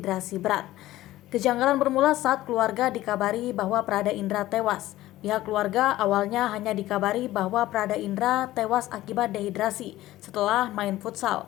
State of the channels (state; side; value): quieter; right; 15.8 dB